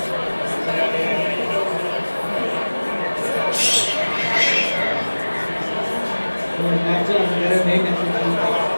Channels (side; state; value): both; inverted; correlation -1.00